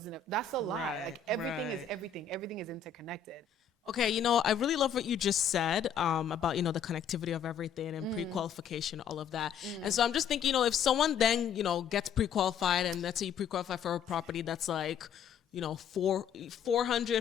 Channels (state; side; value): quieter; right; 7.4 dB